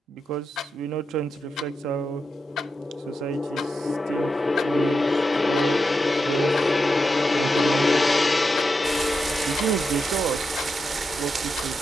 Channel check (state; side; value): normal; both; correlation 0.87